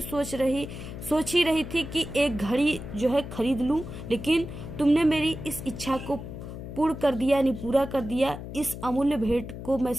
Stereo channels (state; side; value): noise; left; hum, 10 dB below the sound